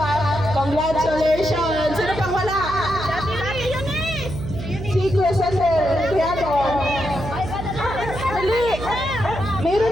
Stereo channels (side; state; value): right; noise; hum, 8 dB below the sound